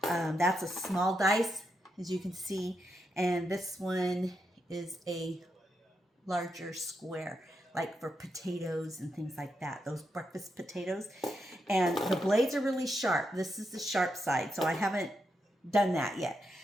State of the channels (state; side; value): normal; both; correlation 0.83